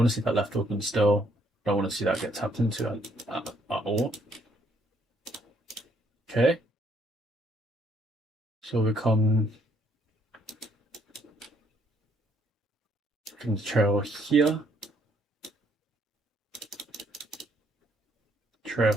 to see that left open still. I don't want to see that get tapped into at all. Okay. So we can trail here.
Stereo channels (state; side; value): normal; both; correlation 0.68